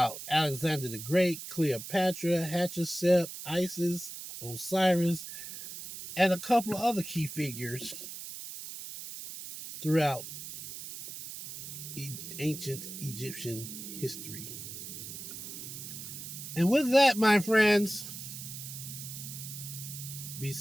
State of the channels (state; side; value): noise; right; hiss, 10 dB below the sound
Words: Alexander the Great, Cleopatra, Hatshepsut, Isis, Osiris, and a couple of other key figures throughout ancient Egyptian history. And with that, my friends, be